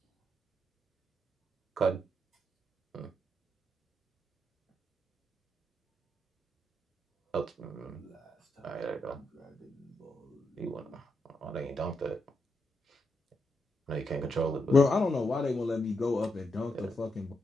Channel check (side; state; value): both; normal; correlation 0.82